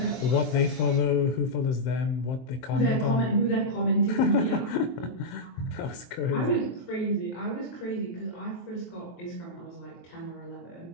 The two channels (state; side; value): late; right; 23 ms